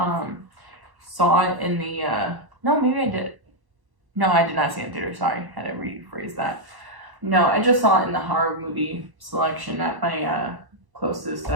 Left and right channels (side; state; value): left; late; 1.1 ms